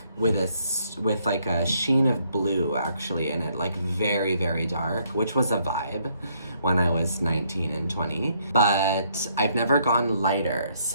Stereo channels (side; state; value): both; inverted; correlation -0.70